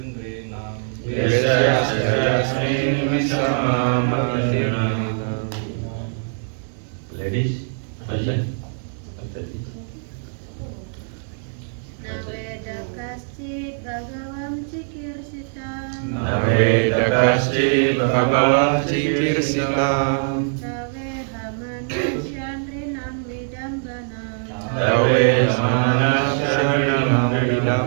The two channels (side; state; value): left; silent; 64 dB below the other